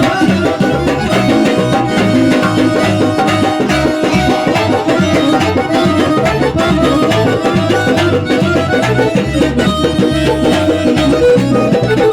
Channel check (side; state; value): both; identical; correlation 1.00